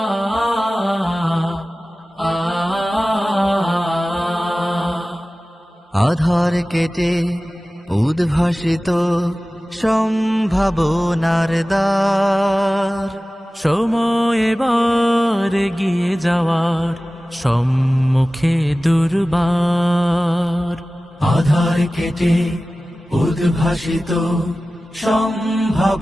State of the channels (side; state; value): both; normal; correlation 0.97